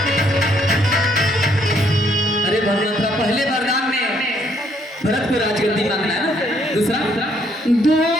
अरे भगवंतरा, पहले वरदान में भरत को राजगद्दी मांगना है ना, दूसरा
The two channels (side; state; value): both; normal; correlation 0.68